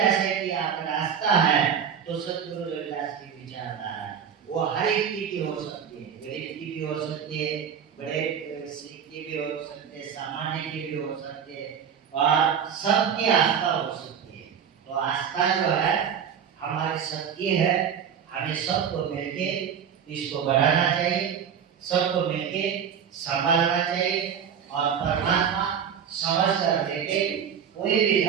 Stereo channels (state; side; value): quieter; left; 7.8 dB